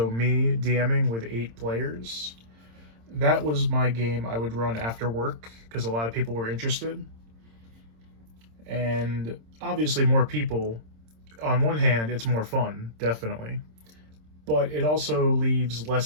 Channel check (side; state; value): left; late; 26 ms